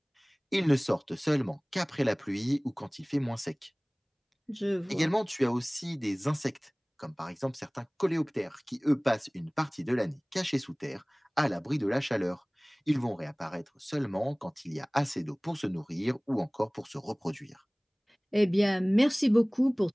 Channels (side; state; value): both; identical; correlation 1.00